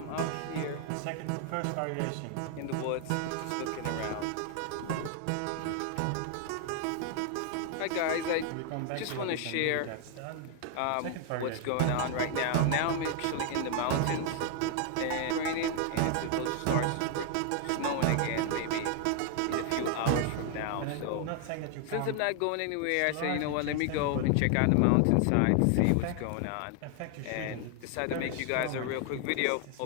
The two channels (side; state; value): both; different; correlation 0.00